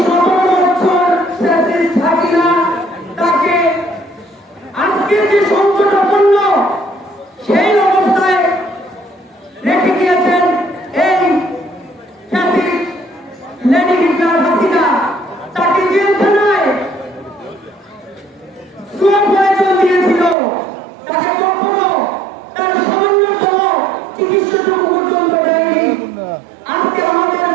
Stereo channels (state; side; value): drops out; left; at 20.4 s